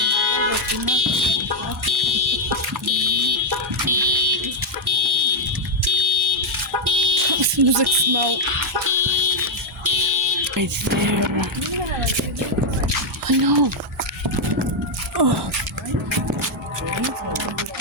It smells like smoke. Right there. I know.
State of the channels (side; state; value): both; normal; correlation 0.02